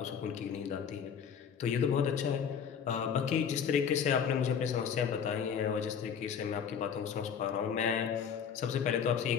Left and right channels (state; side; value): quieter; right; 7.4 dB